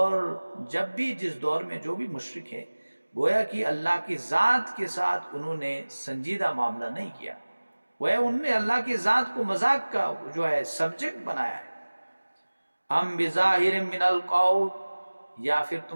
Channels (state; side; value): inverted; both; correlation -1.00